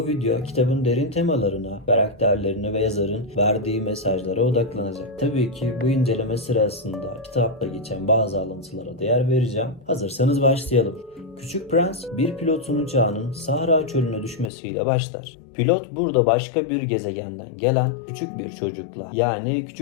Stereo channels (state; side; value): drops out; right; at 14.5 s